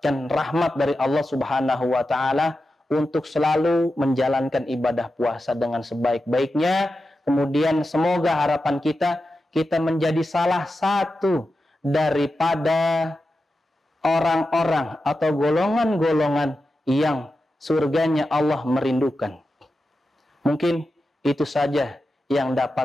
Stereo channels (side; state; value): both; normal; correlation 0.91